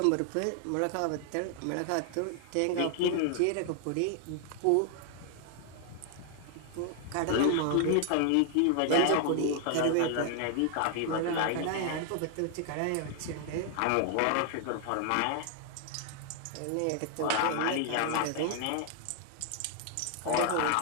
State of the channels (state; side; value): different; both; correlation 0.00